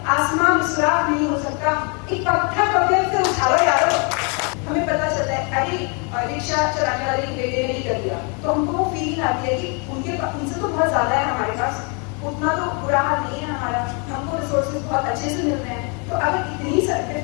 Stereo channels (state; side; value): quieter; right; 35.1 dB